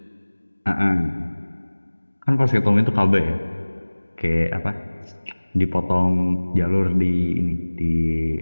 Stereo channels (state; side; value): inverted; both; correlation -1.00